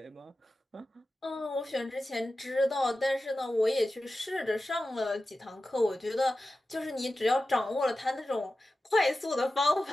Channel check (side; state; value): both; normal; correlation 0.94